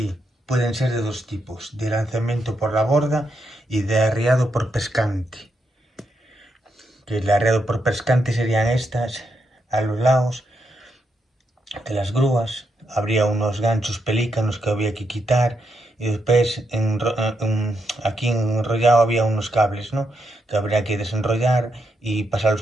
Pueden ser de dos tipos, de lanzamiento por la borda y de arriado por pescante. Que el arreado por pescante serían estas, a los lados de las grúas. Habría unos ganchos pelícanos que había que quitar y después aquí enrollado había unos cables, ¿no? Que habría que desenrollar y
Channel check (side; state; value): both; normal; correlation 0.81